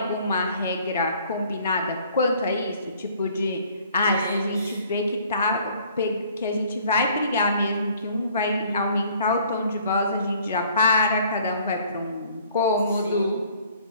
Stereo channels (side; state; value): both; inverted; correlation -0.57